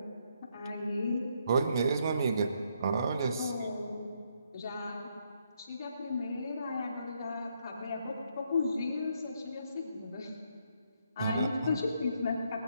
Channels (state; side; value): inverted; both; correlation -0.75